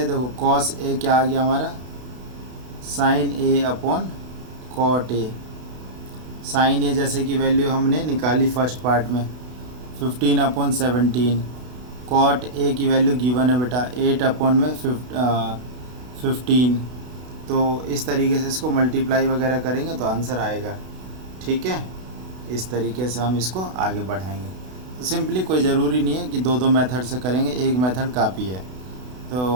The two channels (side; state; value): left; late; 32 ms